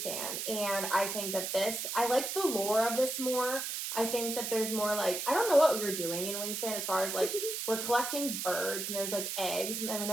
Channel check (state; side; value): noise; right; hiss, 3 dB below the sound